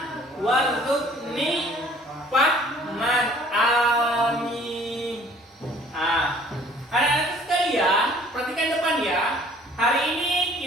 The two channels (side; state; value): both; normal; correlation 0.54